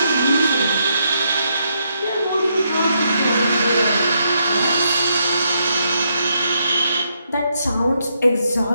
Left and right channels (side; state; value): both; inverted; correlation -0.78